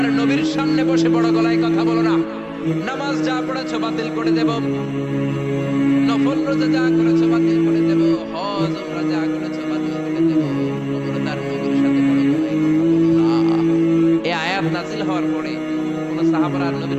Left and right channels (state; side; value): identical; both; correlation 1.00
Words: নবীর সামনে বসে বড় গলায় কথা বলো না। নামাজ যা পড়েছো বাতিল করে দেব, নফল রোজা যা করেছো বাতিল করে দেব, হজ উমরা যা করেছো বাতিল করে দেব। খবরদার নবীর সাথে বড় গলায় কথা বলো না। এই আয়াত নাযিল হওয়ার পরে কোন সাহাবারা